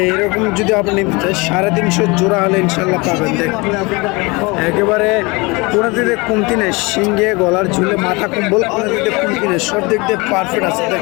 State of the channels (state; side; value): quieter; right; 25.9 dB